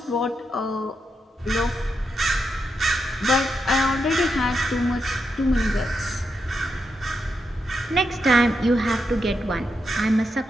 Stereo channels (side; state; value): both; normal; correlation 0.84